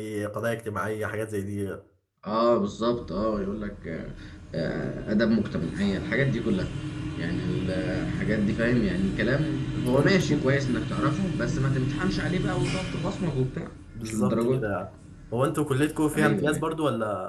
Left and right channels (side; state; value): both; identical; correlation 1.00